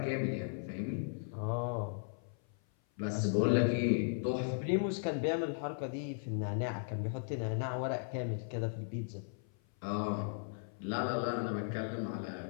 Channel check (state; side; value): silent; right; 53 dB below the other